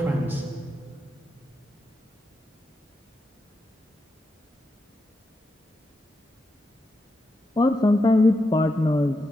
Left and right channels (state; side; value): normal; both; correlation 0.85